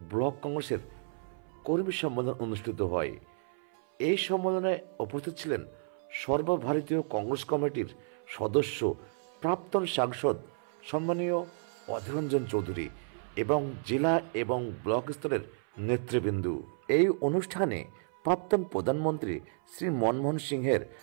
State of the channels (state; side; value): silent; left; 57 dB below the other